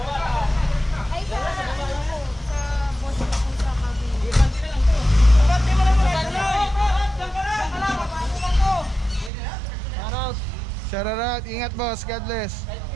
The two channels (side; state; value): left; drops out; at 9.3 s